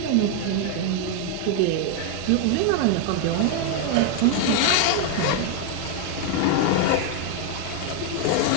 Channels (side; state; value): both; different; correlation 0.01